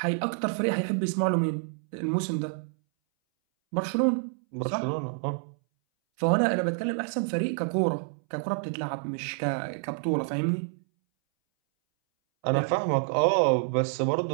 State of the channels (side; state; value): left; silent; 59 dB below the other